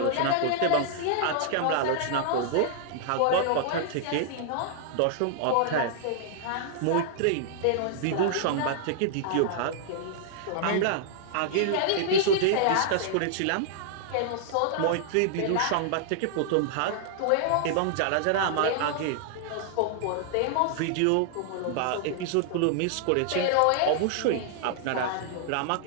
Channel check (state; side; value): different; both; correlation -0.01